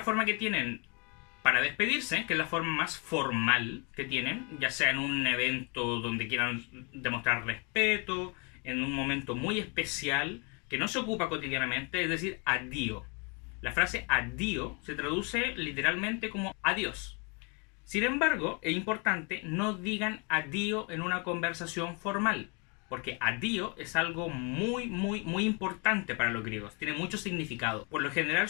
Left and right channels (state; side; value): quieter; right; 33.6 dB